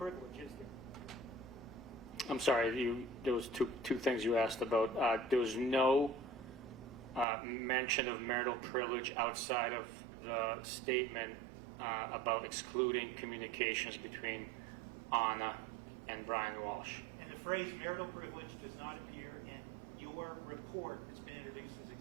is there? I'm sorry, there was two things you asked about. There was no mention of marital privilege outside of the statement about excluding communications between Anna and Brian Walsh. And the phrase marital privilege does not appear in your report that's been introduced as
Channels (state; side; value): drops out; left; at 7.2 s